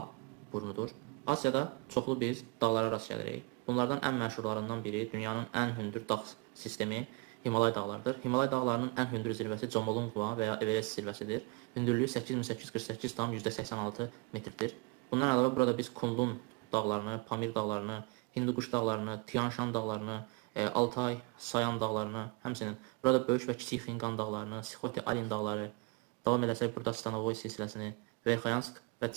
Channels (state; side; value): quieter; left; 27.2 dB